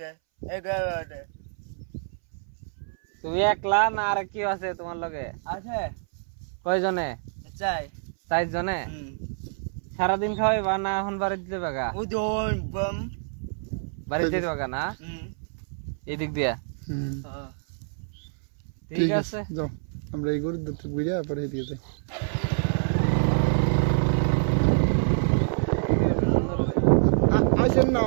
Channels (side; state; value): left; silent; 60 dB below the other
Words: 11,000 তুমি একলা না আর কি আছে তোমার লগে আছে কয়জনে চাই 4 জনে সারাদিন খাওয়াইবা না এখন বাড়িতে দিতে বাগা উদন বম বাড়িতে দিতে বাগা না এদিক দিয়া ঠিক আছে যাও আমরা এই গরুর দুধ বুঝা পরে দিয়ে যাই আসেন না